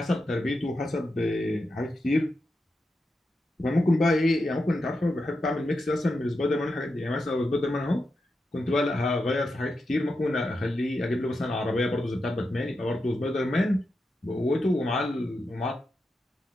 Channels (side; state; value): both; normal; correlation 0.87